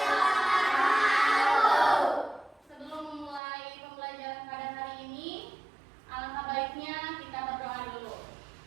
wabarakatuh. Sebelum memulai pembelajaran pada hari ini, alangkah baiknya kita berdoa dulu.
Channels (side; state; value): left; drops out; at 3.4 s